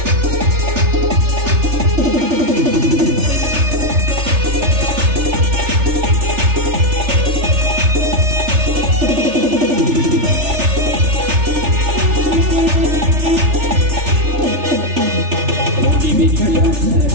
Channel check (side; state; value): left; late; 3.4 ms